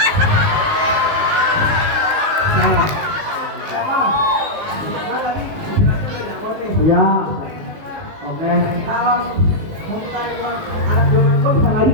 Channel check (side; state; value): left; late; 19 ms